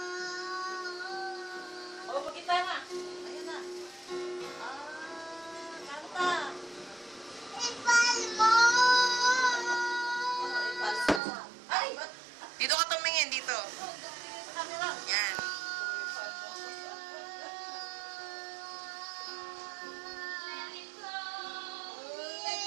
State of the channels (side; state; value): left; drops out; at 11.2 s